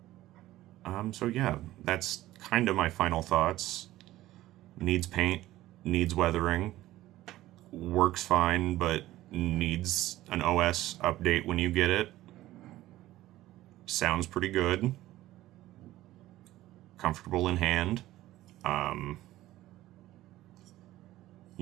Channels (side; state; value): left; quieter; 15.6 dB